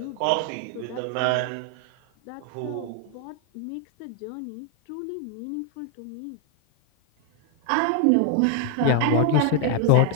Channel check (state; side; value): different; both; correlation 0.00